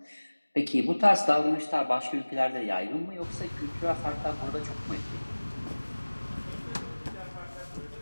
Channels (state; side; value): inverted; both; correlation -1.00